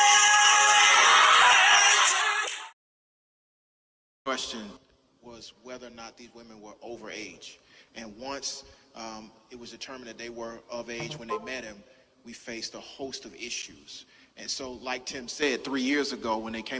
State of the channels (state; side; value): identical; both; correlation 1.00